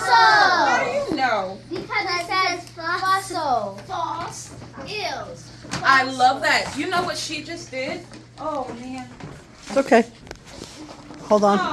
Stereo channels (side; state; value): both; identical; correlation 1.00